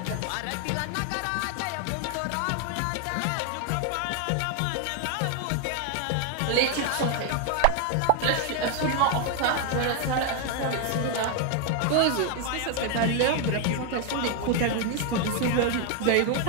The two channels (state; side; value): different; both; correlation 0.00